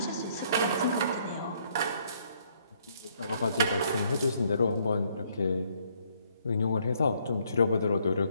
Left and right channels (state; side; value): inverted; both; correlation -0.68